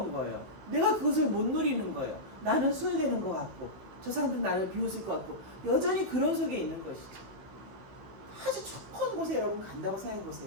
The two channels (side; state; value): left; late; 15 ms